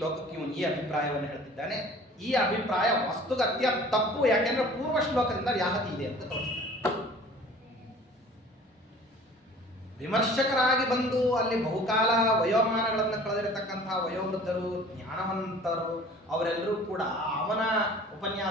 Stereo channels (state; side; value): normal; both; correlation 0.47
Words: ಇವನು ಈ ಅಭಿಪ್ರಾಯವನ್ನು ಹೇಳ್ತಿದ್ದಾನೆ. ಈ ಅಭಿಪ್ರಾಯ ವಸ್ತುಗತ್ಯ ತಪ್ಪು, ಯಾಕೆಂದ್ರೆ ಪೂರ್ವ ಶ್ಲೋಕದಿಂದ ವ್ಯಾಹತಿ ಇದೆ ಅಂತ ತೋರಿಸ್ತಾನೆ. ವಿಮರ್ಶಕರಾಗಿ ಬಂದು ಅಲ್ಲಿ ಬಹುಕಾಲ ವಯೋಮಾನಗಳನ್ನು ಕಳೆದಿರತಕ್ಕಂತಹ ವಯೋವೃದ್ಧರು, ಜ್ಞಾನವಂತರು, ಅವರೆಲ್ಲರೂ ಕೂಡ ಅವನ